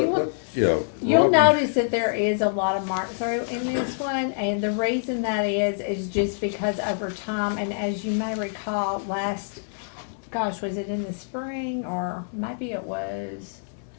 You'll Robin- notice that there is a lot of mark through in this one, and the reason that is just because over time, and as you may recall, was it in the spring, or maybe it was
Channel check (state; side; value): silent; right; digital silence